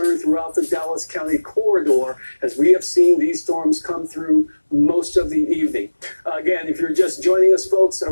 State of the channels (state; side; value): inverted; both; correlation -1.00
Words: throughout the Dallas County corridor as we have seen these storms come through most of the evening. Again, if you're just joining us, folks,